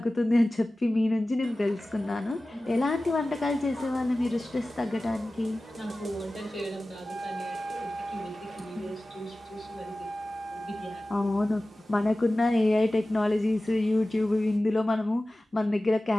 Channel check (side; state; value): both; normal; correlation 0.96